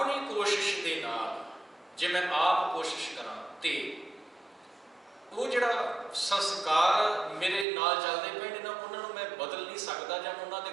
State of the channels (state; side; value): drops out; left; at 7.7 s